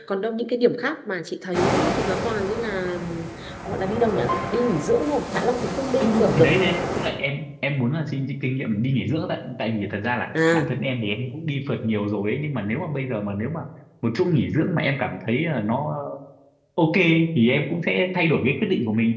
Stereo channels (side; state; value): both; identical; correlation 1.00